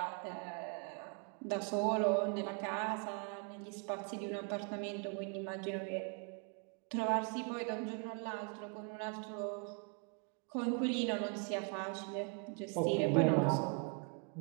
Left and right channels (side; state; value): left; quieter; 36.7 dB